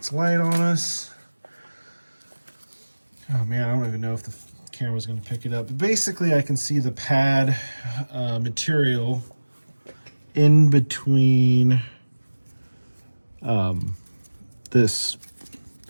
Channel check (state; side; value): inverted; both; correlation -1.00